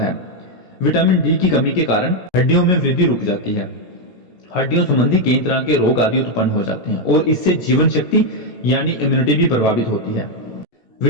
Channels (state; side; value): late; right; 17 ms